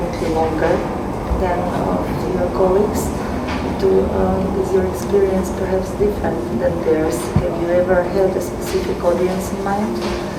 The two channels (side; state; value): both; identical; correlation 1.00